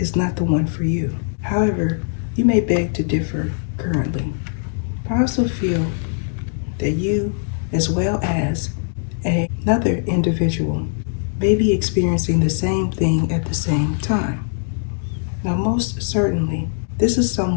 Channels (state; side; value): silent; right; digital silence